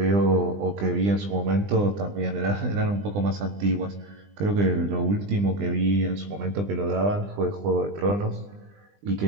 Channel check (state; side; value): late; left; 20 ms